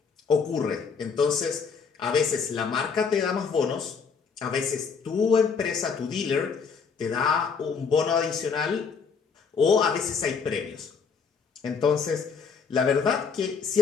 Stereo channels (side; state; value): right; quieter; 5.7 dB